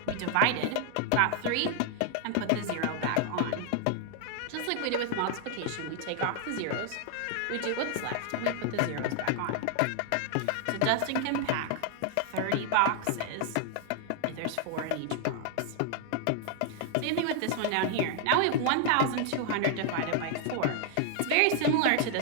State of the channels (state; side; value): different; both; correlation 0.00